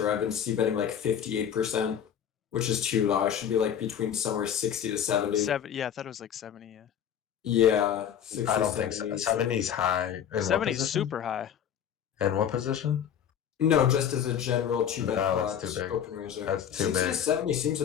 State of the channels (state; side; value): quieter; right; 8.9 dB